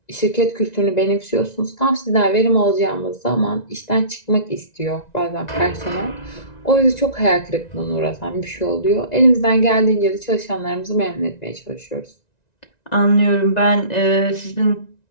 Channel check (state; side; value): late; right; 1.9 ms